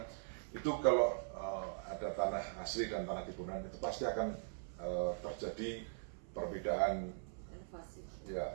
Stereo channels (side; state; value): left; silent; 50 dB below the other